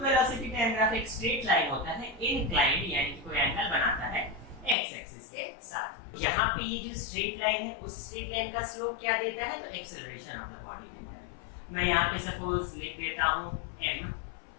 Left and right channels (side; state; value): right; drops out; at 4.8 s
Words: टाइम ग्राफ एक स्ट्रेट लाइन होता है, इंक्लाइंड यानी कि कोई एंगल बनाता है एक्स एक्सिस के साथ। यहाँ पे ये जो स्ट्रेट लाइन है उस स्ट्रेट लाइन का स्लोप क्या देता है? तो एक्सेलरेशन ऑफ द बॉडी देता है। मैं यहाँ पे सपोज लिख देता हूँ